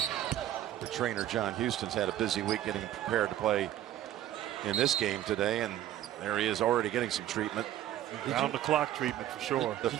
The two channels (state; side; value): quieter; left; 12.5 dB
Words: The trainer John Houston's had a busy week getting prepared to play in this game today, and there he is already getting some treatment. Round the clock treatment for sure. The